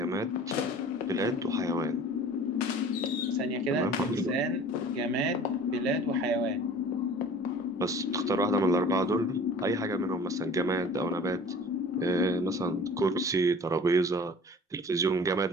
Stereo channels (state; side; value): normal; both; correlation 0.45